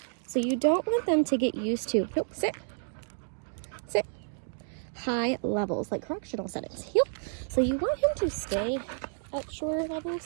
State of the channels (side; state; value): left; silent; digital silence